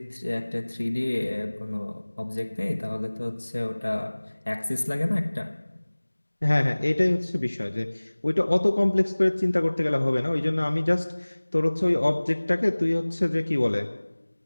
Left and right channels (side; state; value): both; inverted; correlation -1.00